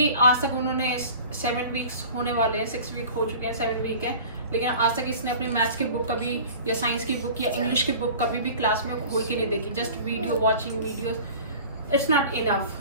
आज तक उन्होंने 7 वीक्स होने वाले हैं, 6 वीक हो चुके हैं, 7 वीक है, लेकिन आज तक इसने अपनी मैथ्स की बुक कभी या साइंस की बुक या इंग्लिश की बुक कभी भी क्लास में खोल के नहीं देखी। Just video watching videos, it's not enough.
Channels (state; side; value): inverted; both; correlation -0.42